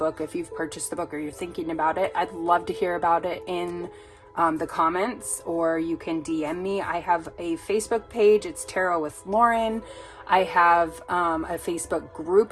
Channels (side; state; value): both; identical; correlation 1.00